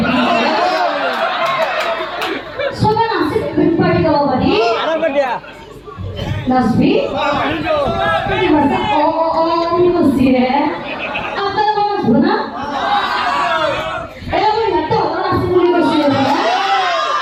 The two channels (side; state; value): both; identical; correlation 1.00